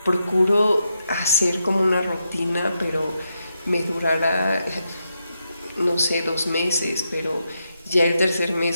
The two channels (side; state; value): both; inverted; correlation -0.84